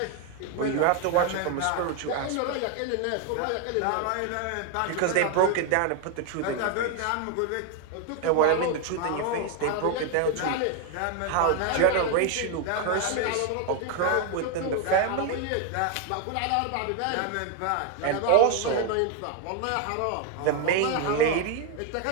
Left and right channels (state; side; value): different; both; correlation 0.01